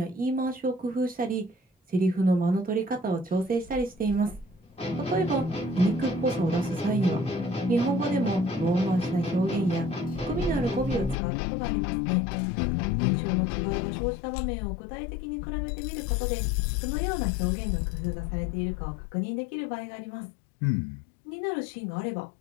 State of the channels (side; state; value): right; drops out; at 11.2 s